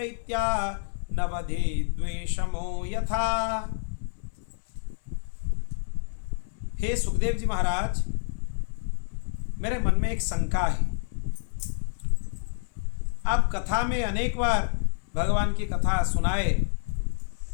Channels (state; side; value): silent; right; digital silence